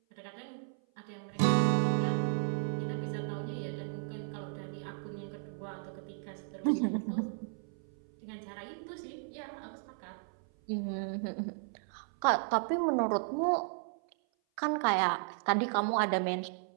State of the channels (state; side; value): silent; left; 55 dB below the other